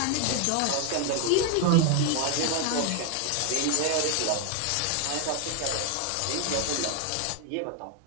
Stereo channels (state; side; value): different; both; correlation 0.01